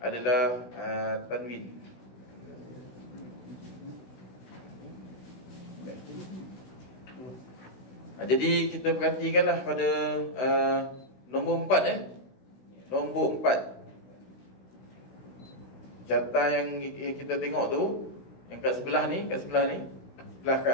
tanwin. Jadi kita perhatikanlah pada nombor 4 nombor 4. Carta yang kita tengok tu, yang kat sebelah ni, sebelah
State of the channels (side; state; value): right; late; 16 ms